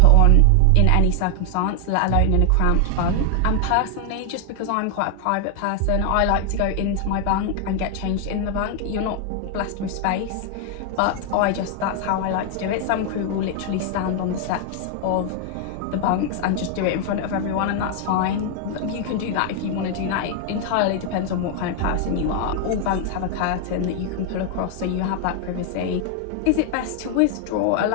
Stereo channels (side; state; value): both; different; correlation 0.00